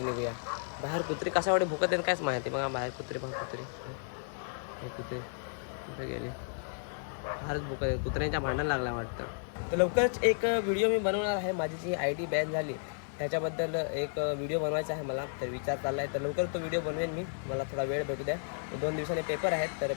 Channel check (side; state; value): right; silent; digital silence